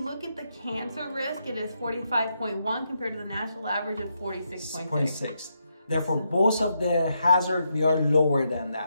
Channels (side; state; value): both; inverted; correlation -0.81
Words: at the cancer risk, it is 45.1 compared to the national average of 46.6. Therefore, both of the hazard, we are lower than